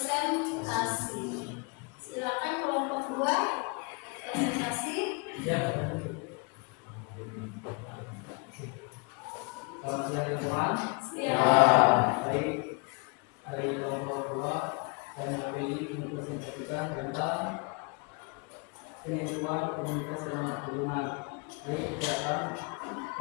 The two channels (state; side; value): quieter; right; 32.1 dB